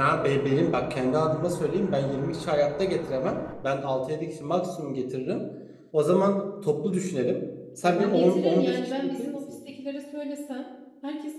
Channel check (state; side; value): identical; both; correlation 1.00